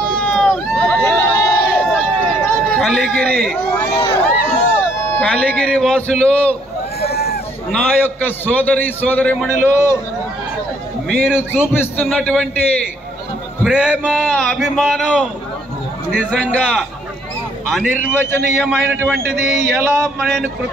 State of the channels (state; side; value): normal; both; correlation 0.67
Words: కలిగిరి వాసులు, నా యొక్క సోదరీమణులు, మీరు చూపిస్తున్నటువంటి ప్రేమ అభిమానం నిజంగా అనిర్వచనీయమైనటువంటిది. ఎలా నేను